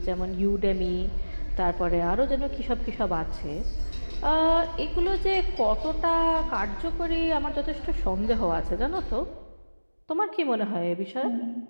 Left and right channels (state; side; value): inverted; both; correlation -1.00